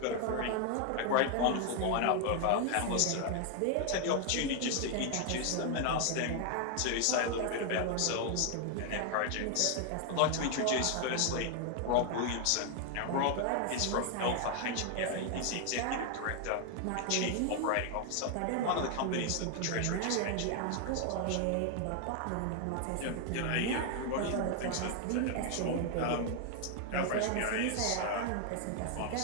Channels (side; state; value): both; different; correlation 0.00